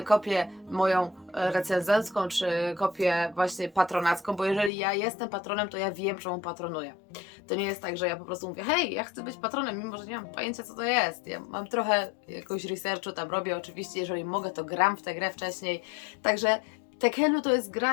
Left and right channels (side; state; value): right; drops out; at 4.7 s